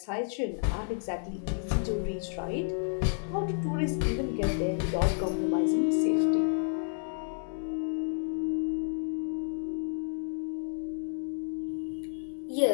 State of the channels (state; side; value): silent; right; 57 dB below the other